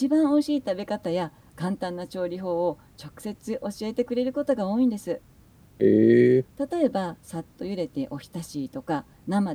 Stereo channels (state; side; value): identical; both; correlation 1.00